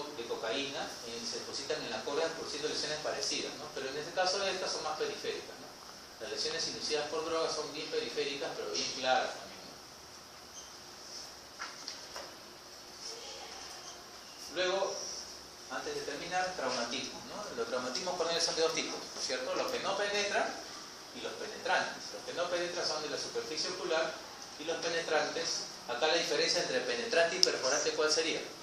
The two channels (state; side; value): identical; both; correlation 1.00